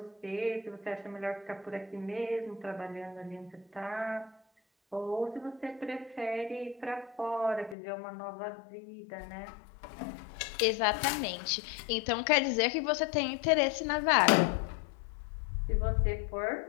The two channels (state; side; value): drops out; right; at 7.8 s